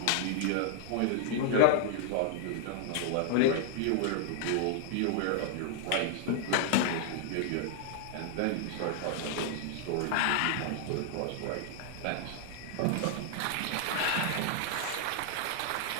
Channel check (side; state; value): both; different; correlation -0.01